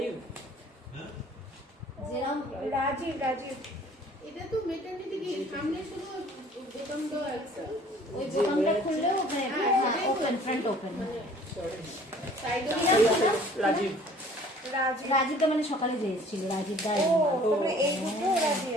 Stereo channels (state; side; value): normal; both; correlation 0.52